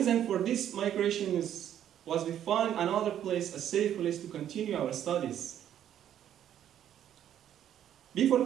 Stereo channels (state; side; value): quieter; left; 10.5 dB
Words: for this migration was we found another place, a safe place to continue our studies. Before